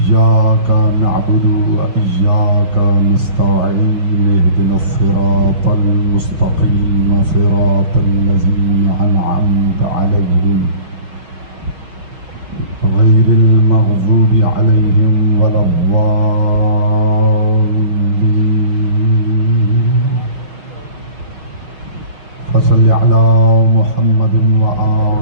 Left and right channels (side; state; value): left; late; 5.8 ms